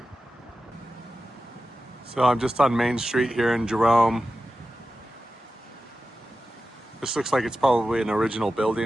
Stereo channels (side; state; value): both; normal; correlation 0.93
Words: So I'm just on Main Street here in Jerome. This looks like it's probably an original